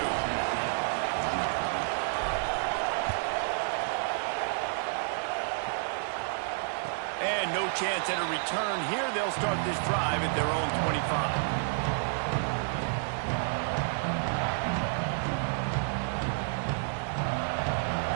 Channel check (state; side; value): silent; left; digital silence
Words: And no chance at a return here. They'll start this drive at their own 25.